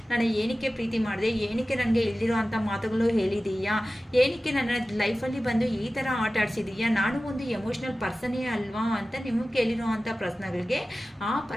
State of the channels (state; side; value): normal; both; correlation 0.96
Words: ನಾನು ಏನಕ್ಕೆ ಪ್ರೀತಿ ಮಾಡಿದೆ, ಏನಕ್ಕೆ ನನಗೆ ಇಲ್ದಿರೋ ಅಂಥ ಮಾತುಗಳು ಹೇಳಿದೀಯಾ, ಏನಕ್ಕೆ ನನ್ನ ಲೈಫಲ್ಲಿ ಬಂದು ಈ ಥರ ಆಟ ಆಡಿಸಿದೀಯಾ, ನಾನು ಒಂದು ಎಮೋಷ್ನಲ್ ಪರ್ಸನೇ ಅಲ್ವಾ ಅಂತ ನಿಮಗೆ ಕೇಳಿರೋ ಅಂಥ ಪ್ರಶ್ನೆಗಳಿಗೆ ಆ